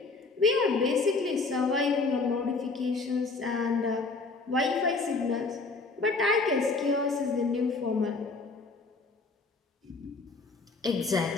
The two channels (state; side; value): quieter; right; 3.9 dB